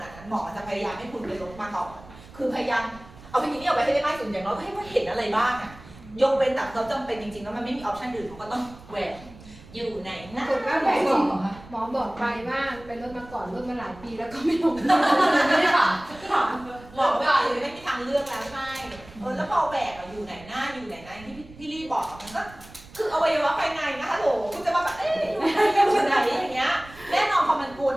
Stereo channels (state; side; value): noise; right; rumble, 20 dB below the sound